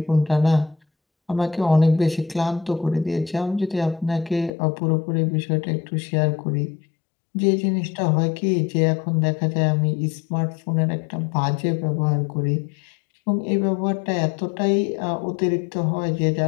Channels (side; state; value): right; drops out; at 4.5 s